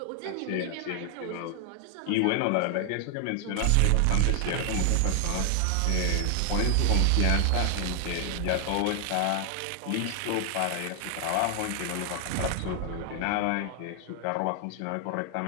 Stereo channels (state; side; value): different; both; correlation 0.00